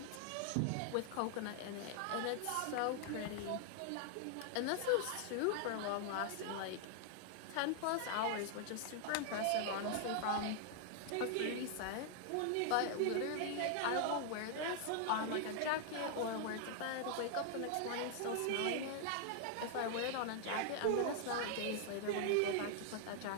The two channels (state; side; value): different; both; correlation 0.00